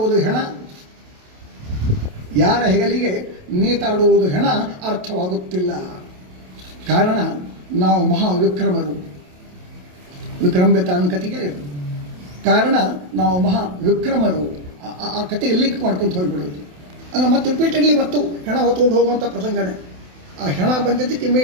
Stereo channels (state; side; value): late; left; 28 ms